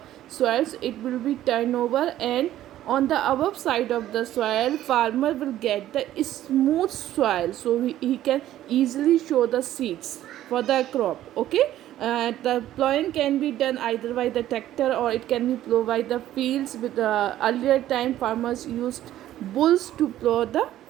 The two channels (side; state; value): left; quieter; 13.1 dB